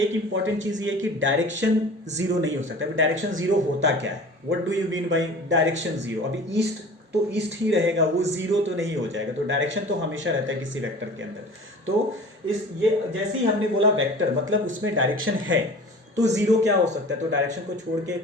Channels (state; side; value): normal; both; correlation 0.41